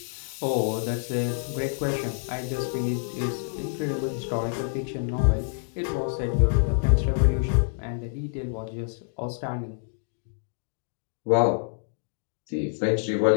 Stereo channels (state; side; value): silent; right; digital silence